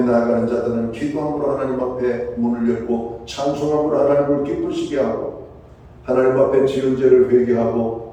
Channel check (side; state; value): both; identical; correlation 1.00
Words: 자들은 기도함으로 하나님 앞에 문을 열고 찬송함으로 하나님을 기쁘시게 하고 하나님 앞에 지은 죄를 회개하고